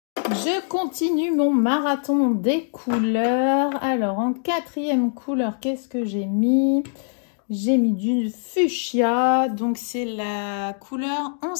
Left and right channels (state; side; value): silent; right; 64 dB below the other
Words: Je continue mon marathon des couleurs. Alors, en quatrième couleur, qu'est-ce que j'ai mis? J'ai mis du fuchsia. Donc, c'est la couleur